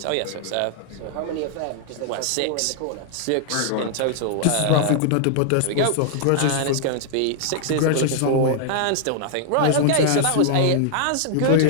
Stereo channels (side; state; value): both; different; correlation -0.01